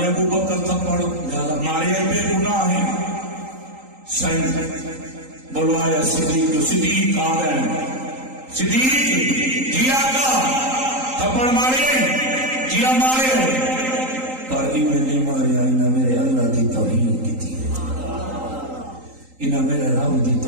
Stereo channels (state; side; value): late; left; 3.8 ms